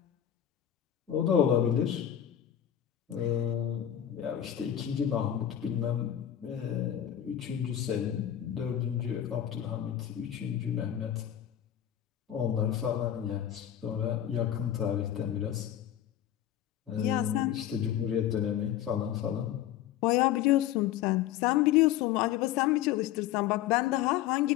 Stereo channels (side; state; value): right; quieter; 11.0 dB